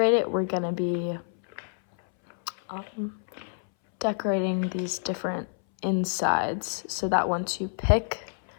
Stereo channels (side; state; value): right; silent; 60 dB below the other